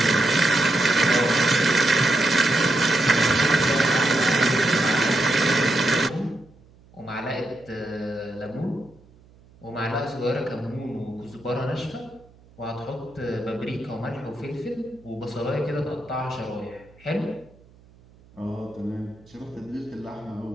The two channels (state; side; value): noise; right; hum, 27 dB below the sound